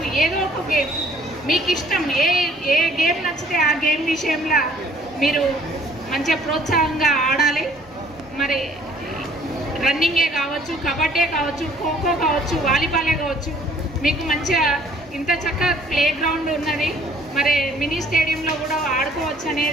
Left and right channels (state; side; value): normal; both; correlation 0.58